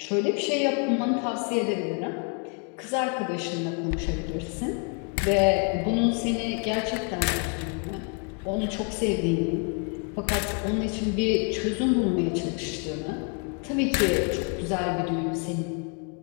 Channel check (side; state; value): right; quieter; 37.0 dB